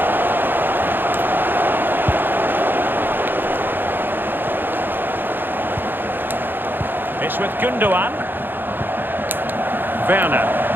It's with Gundogan. Werner.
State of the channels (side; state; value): left; late; 0.096 ms